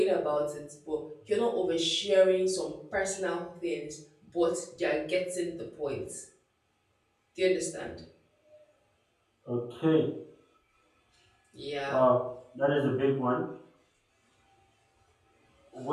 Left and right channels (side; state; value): both; identical; correlation 1.00